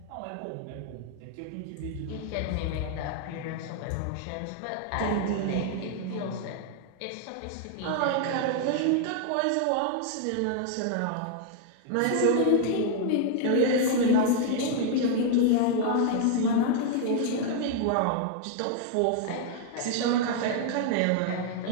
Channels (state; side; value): different; both; correlation 0.00